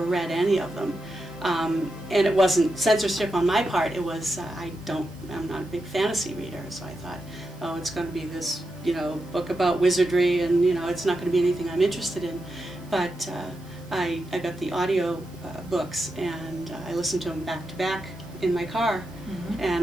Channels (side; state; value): right; noise; hiss, 29 dB below the sound